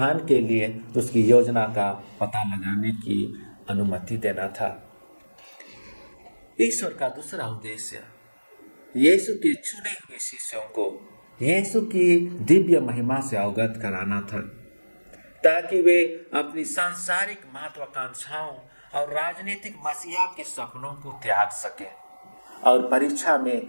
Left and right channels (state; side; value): inverted; both; correlation -1.00